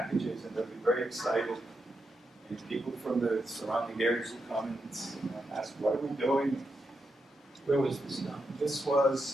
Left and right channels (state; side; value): normal; both; correlation 0.85